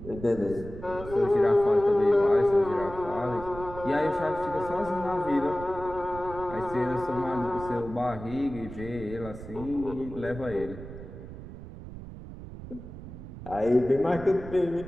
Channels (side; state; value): right; noise; rumble, 13 dB below the sound